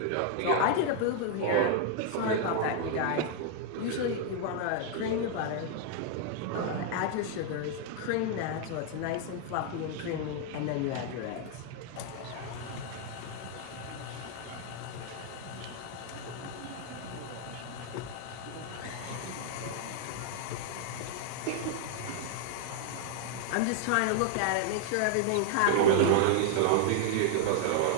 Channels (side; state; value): both; different; correlation 0.00